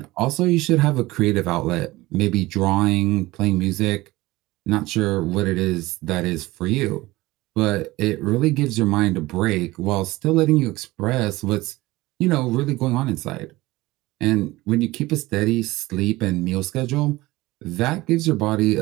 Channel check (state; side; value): quieter; left; 19.4 dB